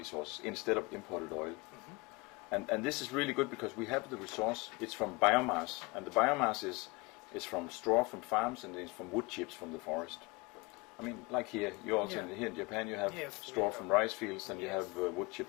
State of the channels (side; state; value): right; quieter; 25.5 dB